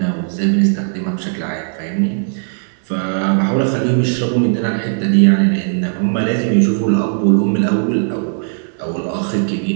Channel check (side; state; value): left; silent; digital silence